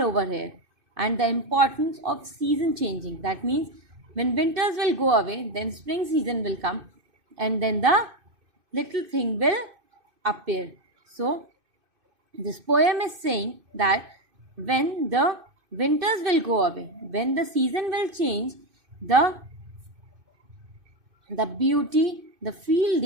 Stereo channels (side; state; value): left; late; 2.5 ms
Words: over here and the importance of season changing. That means when winters will go away, then spring season will come and then the little thing will appear. So, this poem is saying that when the winters will go away, when the season will change, the beauty, the field